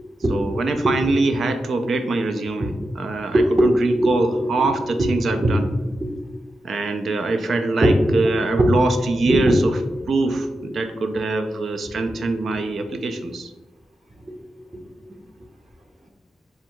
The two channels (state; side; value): normal; both; correlation 0.89